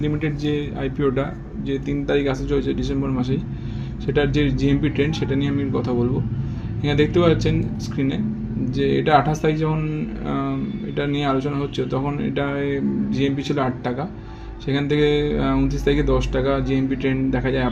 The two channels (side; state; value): both; identical; correlation 1.00